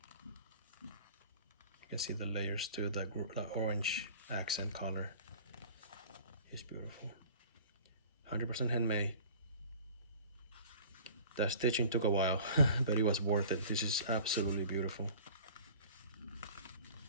You can see the layers too, the orange accent color is beautiful. 100% handmade. That stitching took a while, but it was worth it. This is absolutely beautiful.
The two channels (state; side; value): inverted; both; correlation -0.45